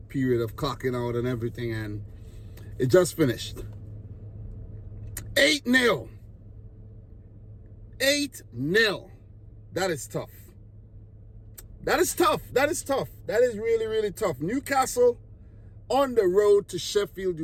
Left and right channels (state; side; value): identical; both; correlation 1.00